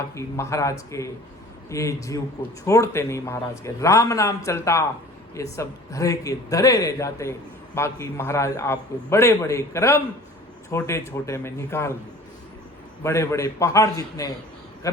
महाराज के ये जीव को छोड़ते नहीं। महाराज के राम नाम चलता, ये सब धरे के धरे रह जाते। बाकी महाराज आपको बड़े बड़े कर्म छोटे छोटे में निकाल दिए। बड़े बड़े पहाड़ जितने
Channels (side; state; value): both; normal; correlation 0.45